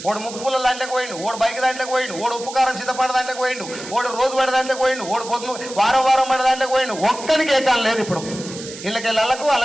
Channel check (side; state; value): right; noise; hiss, 13 dB below the sound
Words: ఓడు ముక్కుపుల్ల దాంట్లోకి పోయిండు, ఓడు బైక్ దాంట్లోకి పోయిండు, ఓడు ఉప్పు కారం సిద్ధపడ దాంట్లోకి పోయిండు, ఓడు రోజు పడే దాంట్లోకి పోయిండు, ఓడు పొద్దు వారం పడే దాంట్లోకి పోయిండు. ఒక్కరికి ఏకాలం లేదు ఇప్పుడు. వీళ్ళకెళ్ళకు